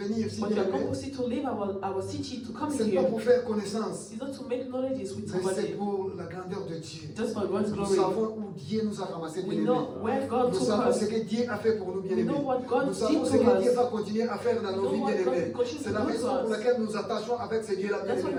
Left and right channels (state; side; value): identical; both; correlation 1.00